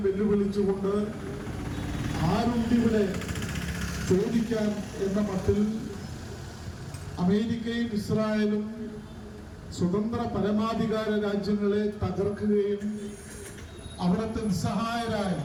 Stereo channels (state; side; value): identical; both; correlation 1.00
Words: വെല്ലുവിളിച്ചുകൊണ്ട് ആരുണ്ടിവിടെ ചോദിക്കാൻ എന്ന മട്ടിൽ അമേരിക്കയും ഇസ്രായേലും സ്വതന്ത്ര പരമാധികാര രാജ്യങ്ങളെ തകർക്കുകയും അവിടുത്തെ നിസ്സഹായരായ